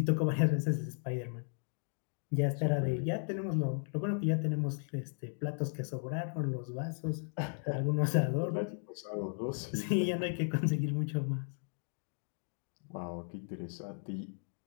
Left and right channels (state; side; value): silent; right; 54 dB below the other